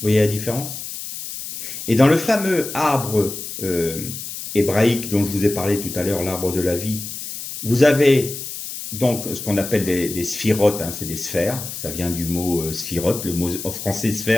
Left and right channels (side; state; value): left; noise; hiss, 8 dB below the sound